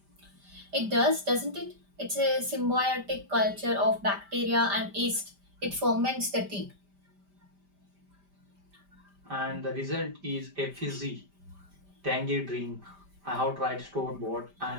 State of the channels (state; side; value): late; left; 5.1 ms